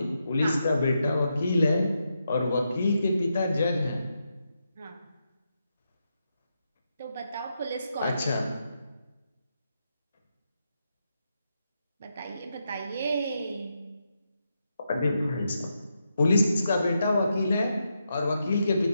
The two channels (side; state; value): both; inverted; correlation -0.84